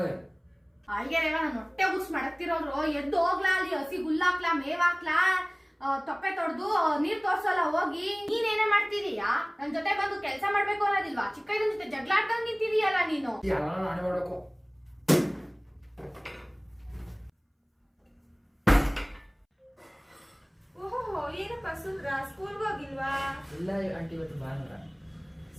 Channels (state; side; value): identical; both; correlation 1.00